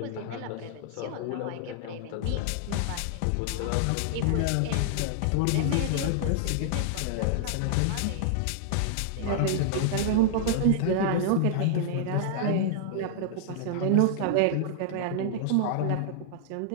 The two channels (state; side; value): different; both; correlation -0.01